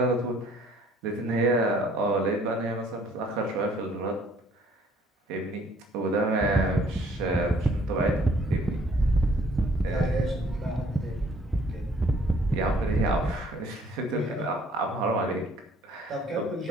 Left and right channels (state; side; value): normal; both; correlation 0.60